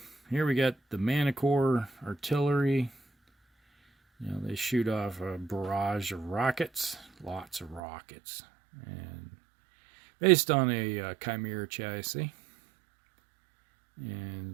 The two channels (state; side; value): drops out; left; at 7.8 s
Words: Here we got the Manticore artillery. You know, they shoot off a barrage of rockets, lots of rockets, and based on a Chimera chassis,